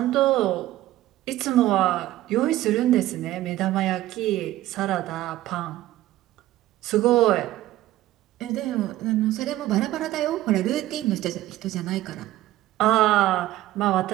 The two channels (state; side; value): quieter; left; 15.1 dB